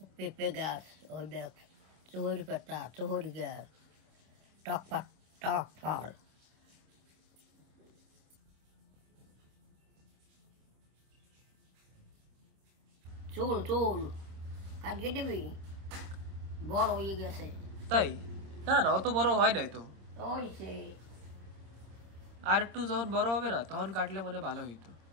পেঁপে গাছ, ওই দেখ চুহরি পাতা, চুহরি গাছ, টক ফল। চুল কাটিয়ে দিবি, বড় হয়ে গেছে। তাই? না না অত বড় হয় নাই তো। ওইছে আর একটু যখন বড় হবে না তখন কাটলে মনে ভালো হইতো।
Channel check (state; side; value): late; left; 26 ms